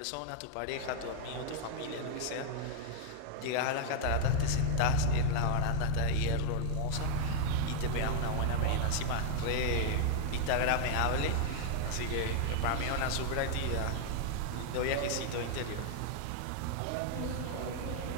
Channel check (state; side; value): different; both; correlation 0.00